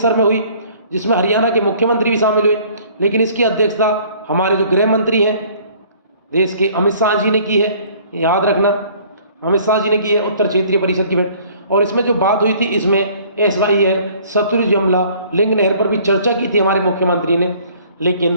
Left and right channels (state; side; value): inverted; both; correlation -0.55